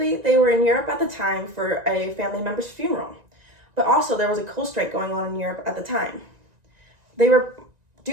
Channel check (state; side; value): late; left; 1.9 ms